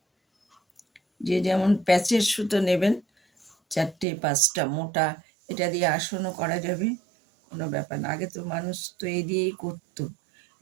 যে যেমন প্যাচের সুতো নেবেন, 4টে 5টা মোটা, এটা দিয়ে আসনও করা যাবে, কোনো ব্যাপার না। আগে তো মানুষ তো এই দিয়েই করতো।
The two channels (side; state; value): left; drops out; at 4.0 s